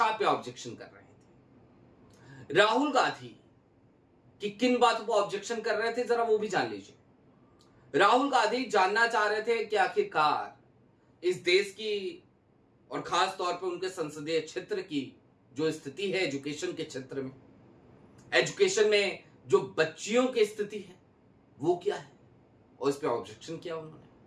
पे ऑब्जेक्शन कर रहे थे। राहुल गांधी कि किन बातों पर ऑब्जेक्शन कर रहे थे जरा वो भी जान लीजिए। राहुल गांधी जानना चाह रहे थे कि आखिरकार इस देश की और खास तौर पर उनके संसदीय क्षेत्र की जो स्थिति है एजुकेशन के क्षेत्र में, एजुकेशन में जो बच्चियों की स्थिति है वो क्या है, और इस पे ऑब्जेक्शन किया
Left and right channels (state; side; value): identical; both; correlation 1.00